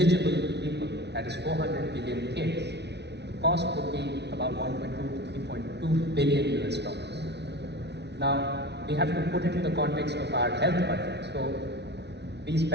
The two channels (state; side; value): late; left; 0.50 ms